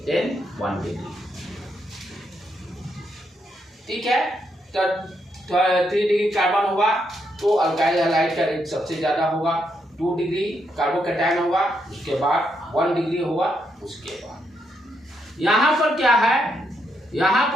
then 1 degree. ठीक है, तो 3 डिग्री कार्बन होगा तो अल्काइल हैलाइड का रेट सबसे ज्यादा होगा, 2 डिग्री कार्बोकैटायन होगा, उसके बाद 1 डिग्री होगा, उसके बाद यहाँ पर क्या है, यहाँ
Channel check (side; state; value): both; normal; correlation 0.79